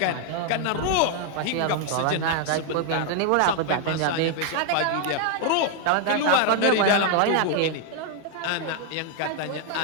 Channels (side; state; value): both; different; correlation 0.00